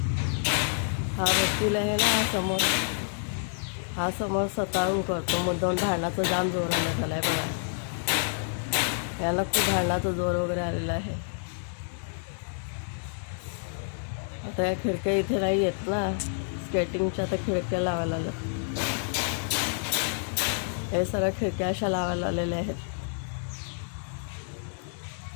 हा वकील आहे ना, हा समोर स्वतःहून करतो. मुद्दाम भांडणाचं जाम जोर आला आहे बघा. याला खूप भांडणाचा जोर वगैरे आलेला आहे. आता या खिडक्या इथे नाही येत ना, स्केटिंगच्या आता खिडक्या लावायला लागल्या. हे सगळ्या खिडक्या अशा लावायला आलेल्या आहेत.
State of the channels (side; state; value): right; silent; digital silence